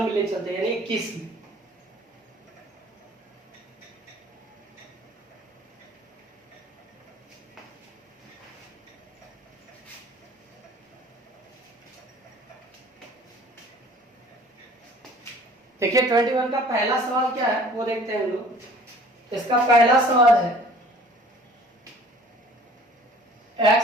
ले चलते हैं, यानी 21 में। देखिए 21 का पहला सवाल क्या है वो देखते हैं हम लोग। इसका पहला सवाल है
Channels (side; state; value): both; normal; correlation 0.50